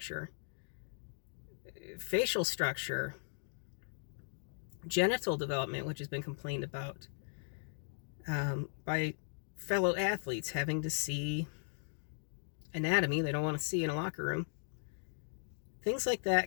facial structure, genital development, which has been complained about by fellow athletes having to see anatomy they don't want to see in a locker room. Things like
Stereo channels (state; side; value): silent; right; digital silence